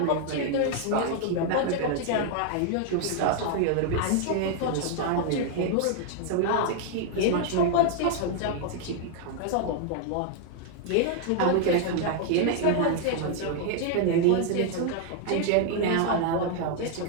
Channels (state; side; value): different; both; correlation 0.00